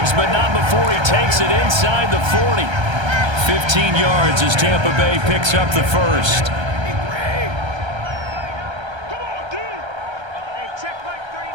but not before he takes it inside the 40. 15 yards as Tampa Bay picks up the 1st.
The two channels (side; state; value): left; late; 1.3 ms